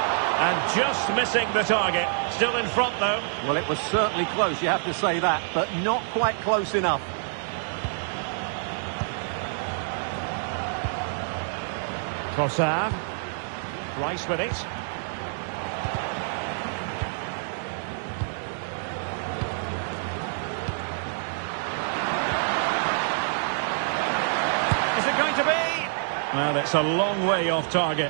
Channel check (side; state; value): left; silent; digital silence